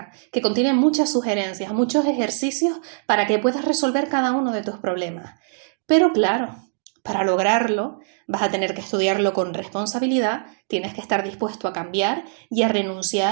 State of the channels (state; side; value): silent; left; digital silence